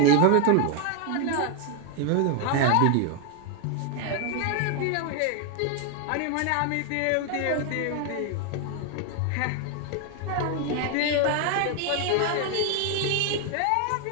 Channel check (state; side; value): different; both; correlation 0.01